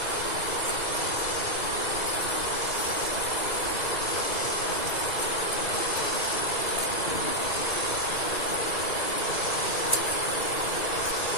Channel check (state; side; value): late; right; 2.4 ms